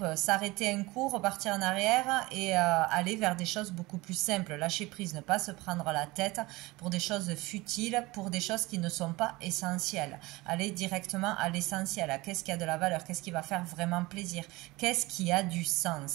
s'arrêter un coup, repartir en arrière et aller vers des choses beaucoup plus simples. Lâcher prise, ne pas se prendre la tête pour des choses futiles, pour des choses qui ne sont pas essentielles. Aller directement à l'essentiel. Qu'est-ce qui a de la valeur? Qu'est-ce qui va faire vraiment plaisir? Qu'est-ce qui a du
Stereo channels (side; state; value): left; quieter; 21.6 dB